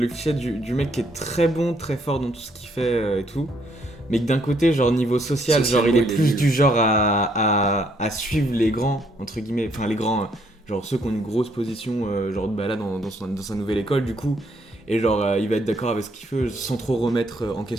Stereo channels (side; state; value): both; normal; correlation 0.69